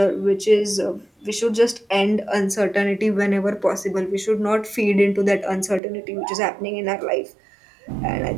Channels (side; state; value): left; drops out; at 5.8 s